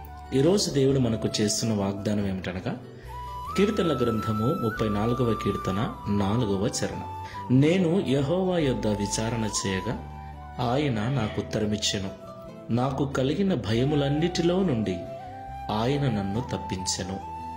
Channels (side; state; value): both; identical; correlation 1.00